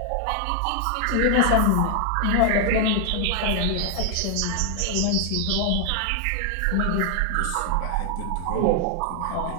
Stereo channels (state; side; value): different; both; correlation 0.00